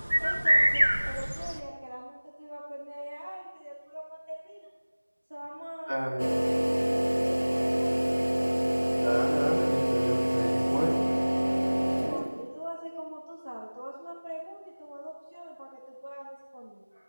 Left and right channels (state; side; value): inverted; both; correlation -1.00